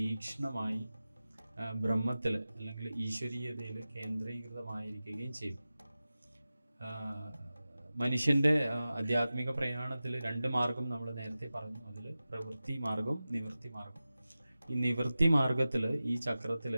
ബ്രഹ്മത്തിൽ അല്ലെങ്കിൽ ഈശ്വരീയതയിൽ കേന്ദ്രീകൃതമായിരിക്കുകയും ചെയ്യും. മനുഷ്യൻ്റെ ആധ്യാത്മിക പ്രയാണത്തിൽ 2 മാർഗം നമ്മൾ നേരത്തെ പറഞ്ഞു. അതിൽ പ്രവൃത്തി മാർഗം, നിവൃത്തി മാർഗം. ഈ നിവൃത്തി മാർഗത്തിൽ ഈ ചക്രത്തിൽ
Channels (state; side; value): inverted; both; correlation -0.95